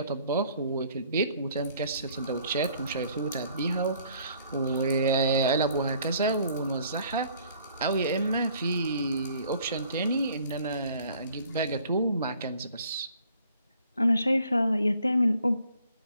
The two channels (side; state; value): both; inverted; correlation -0.58